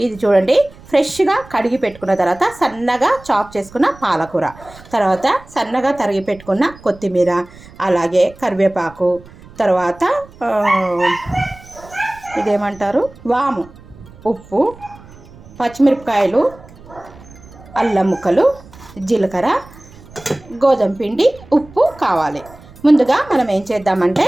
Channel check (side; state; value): right; noise; rumble, 22 dB below the sound